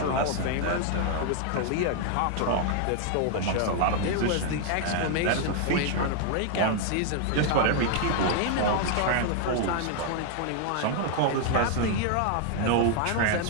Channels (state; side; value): different; both; correlation 0.00